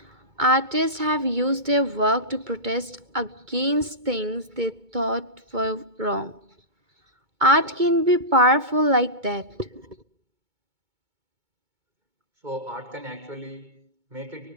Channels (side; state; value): left; late; 2.2 ms